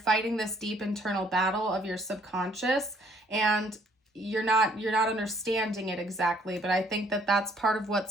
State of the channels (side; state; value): both; normal; correlation 0.64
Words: this deep internal battle of your subconscious, and you're not understanding it exactly, but I think that that's part of